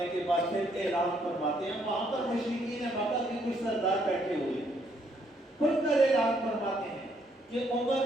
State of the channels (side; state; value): both; normal; correlation 0.70